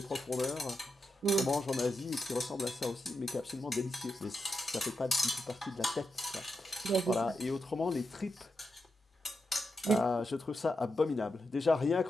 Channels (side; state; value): both; normal; correlation 0.87